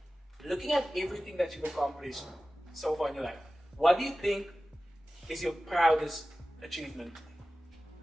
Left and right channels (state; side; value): normal; both; correlation 0.96